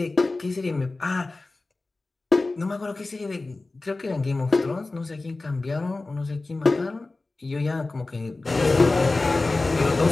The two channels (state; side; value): quieter; right; 3.3 dB